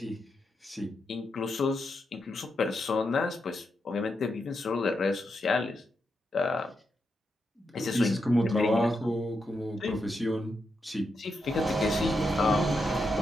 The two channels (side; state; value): both; normal; correlation 0.84